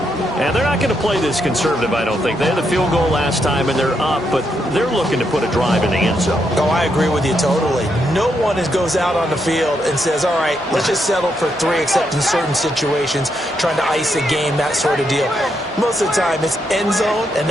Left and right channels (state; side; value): normal; both; correlation 0.79